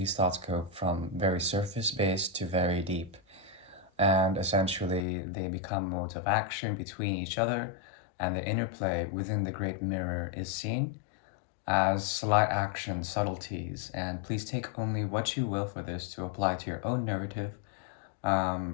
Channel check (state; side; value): drops out; right; at 5.1 s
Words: thoughts go from very surface based to very deep, and essentially they become modes of action between each other, and the interplay within the great mirror is seen as slight action subtleties, and please take only what you will for this to apply to your own narrative.